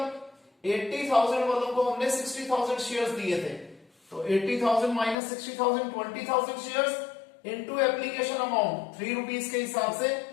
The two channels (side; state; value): right; drops out; at 5.2 s